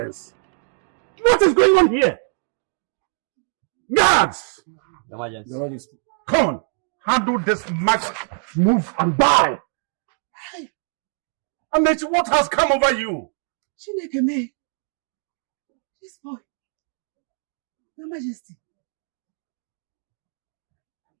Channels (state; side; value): silent; left; 63 dB below the other